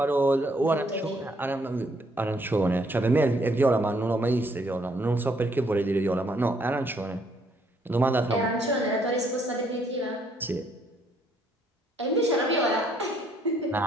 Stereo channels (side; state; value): both; normal; correlation 0.68